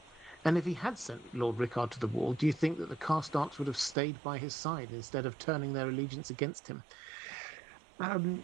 And if he had sent Lord Rickard to the wall, do you think that the Karstarks would have stayed by his side instead of turning their allegiance against him?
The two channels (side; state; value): left; drops out; at 4.0 s